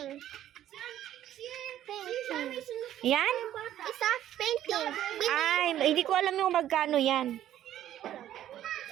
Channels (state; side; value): quieter; left; 12.0 dB